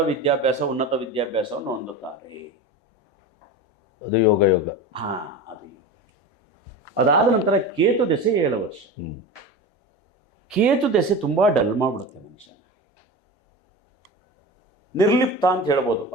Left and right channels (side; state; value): both; normal; correlation 0.28